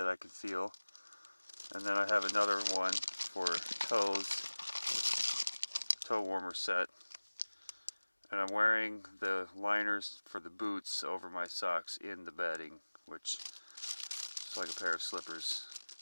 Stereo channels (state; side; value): inverted; both; correlation -1.00